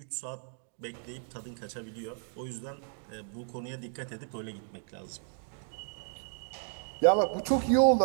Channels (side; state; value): left; silent; digital silence